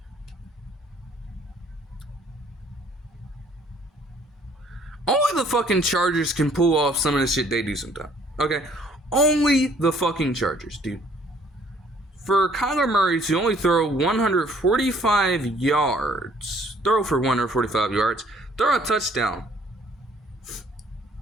the fucking Chargers can pull off some of the shit they do sometimes. Okay? Only the fucking Chargers, dude. For Kyler Murray to only throw 145 yards, throw a touchdown,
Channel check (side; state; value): both; normal; correlation 0.60